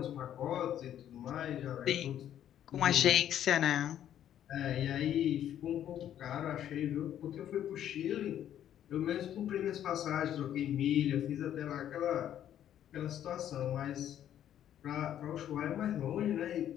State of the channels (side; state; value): right; quieter; 10.8 dB